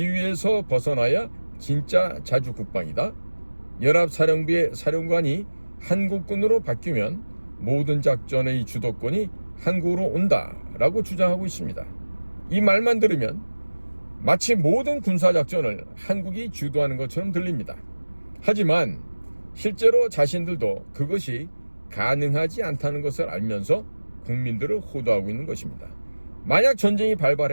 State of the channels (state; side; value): inverted; both; correlation -1.00